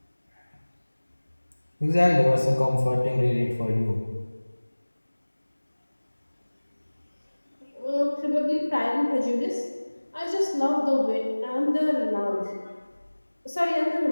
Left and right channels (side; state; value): both; inverted; correlation -1.00